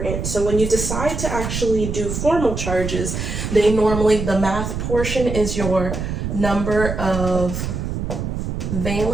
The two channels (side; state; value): right; noise; rumble, 4 dB below the sound